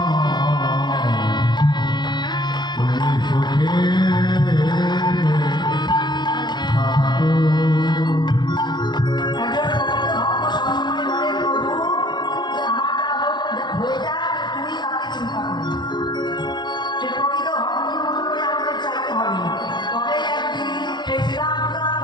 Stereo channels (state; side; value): late; right; 0.21 ms